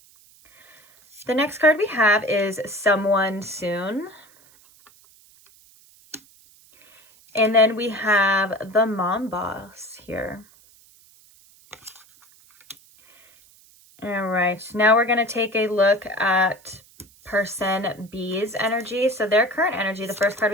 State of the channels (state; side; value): noise; right; hiss, 28 dB below the sound